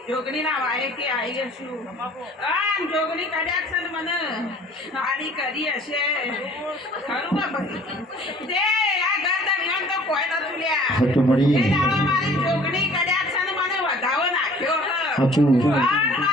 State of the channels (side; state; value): both; normal; correlation 0.51